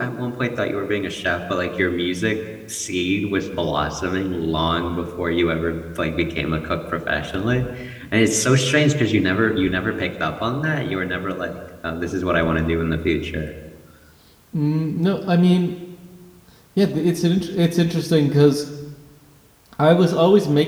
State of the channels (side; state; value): both; identical; correlation 1.00